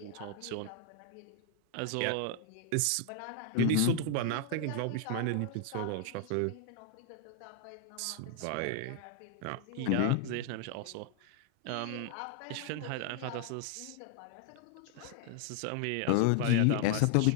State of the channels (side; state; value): both; different; correlation 0.00